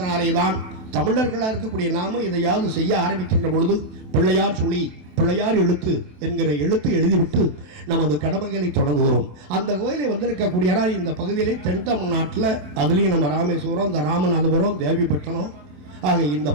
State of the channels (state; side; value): late; left; 27 ms